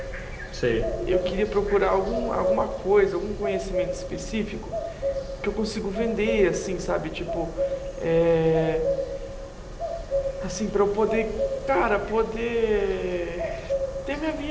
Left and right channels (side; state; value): both; identical; correlation 1.00